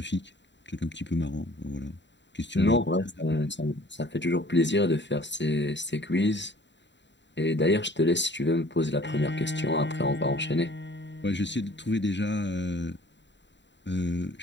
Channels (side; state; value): right; late; 0.52 ms